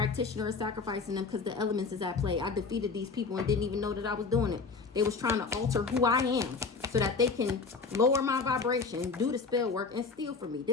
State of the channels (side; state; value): right; quieter; 4.6 dB